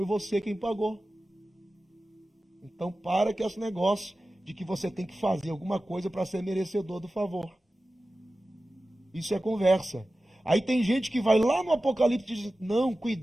você quem pagou. Então, para com esse negócio de que você tem que fazer alguma coisa para ser merecedor do favor. Isso é conversa. Aí tem gente que vai lá no Apocalipse e diz, não,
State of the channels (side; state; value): both; normal; correlation 0.95